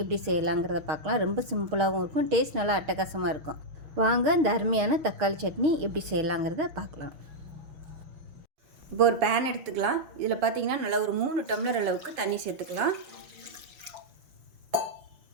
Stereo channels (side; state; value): left; late; 6.3 ms